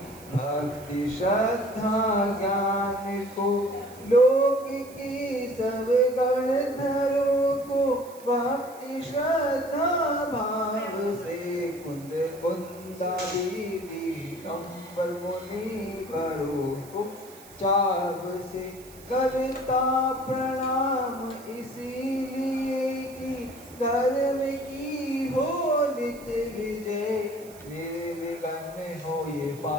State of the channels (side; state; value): right; noise; hiss, 21 dB below the sound